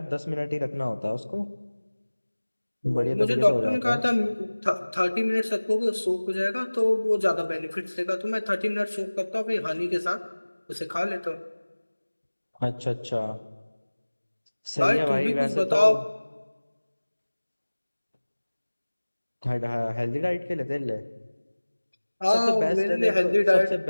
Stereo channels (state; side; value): inverted; both; correlation -1.00